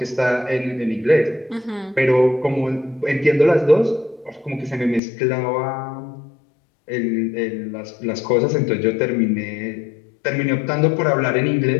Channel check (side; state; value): right; drops out; at 5.0 s